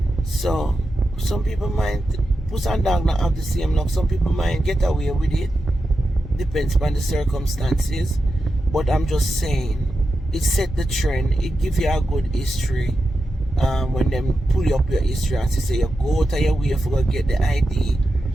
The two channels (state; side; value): normal; both; correlation 0.89